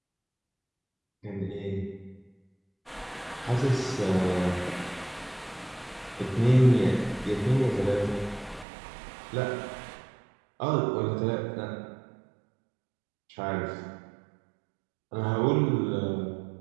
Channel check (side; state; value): left; drops out; at 8.7 s